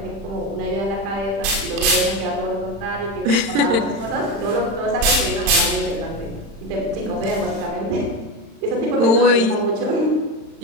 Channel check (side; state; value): left; late; 35 ms